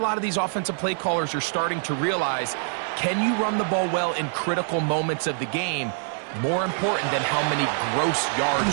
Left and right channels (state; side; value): silent; left; digital silence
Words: of these offensive play callers are starting to realize. Can you run the ball well in critical moments of the game? More important than how many gross